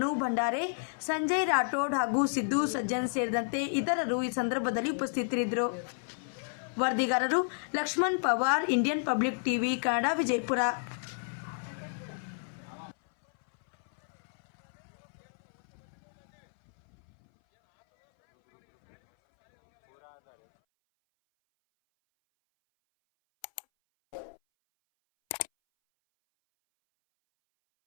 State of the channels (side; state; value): right; silent; 57 dB below the other